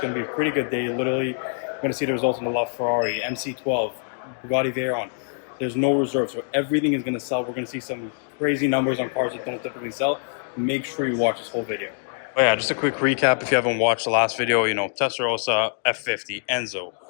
to be a pretty good day. Literally, we're going to see the results on the LaFerrari, MC12, Bugatti Veyron. There's no reserve, so everything is going to sell. We're going to see some crazy numbers on cars that don't typically sell. Make sure you watch this whole video. Oh yeah, just a quick recap if you haven't watched the last video. You know, Testarossa, F40, Enzo,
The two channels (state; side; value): silent; right; digital silence